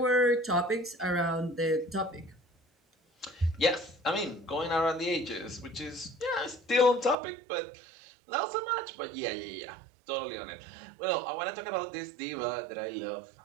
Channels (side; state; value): left; drops out; at 7.2 s